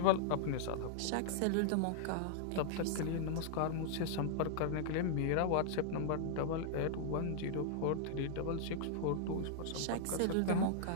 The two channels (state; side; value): different; both; correlation -0.01